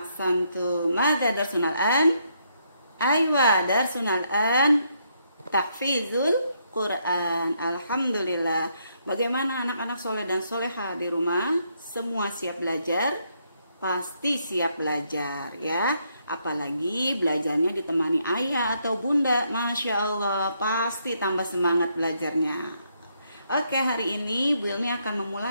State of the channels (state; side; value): inverted; both; correlation -0.75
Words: Madza darsuna al-an? Aywa, darsuna al-an tahfizul Quran. Alhamdulillah. Bagaimana anak-anak soleh dan soleha di rumah? Semua siap belajar? Pasti siap belajar ya. Apalagi belajarnya ditemani ayah atau bunda. Masya Allah, pasti tambah semangat belajarnya. Oke, hari ini Bu Ilmi akan